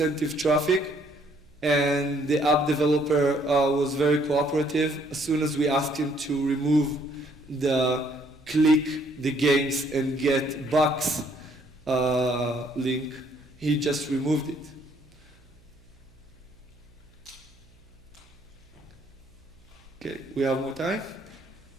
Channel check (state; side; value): noise; right; hum, 28 dB below the sound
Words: traffic, and the app developer was very cooperative. As soon as we asked him to remove the click the games and get bucks link, he just removed it. Okay, we have more time.